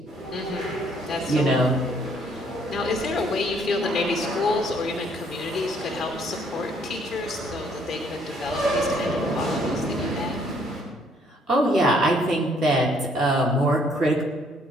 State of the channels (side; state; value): both; normal; correlation 0.65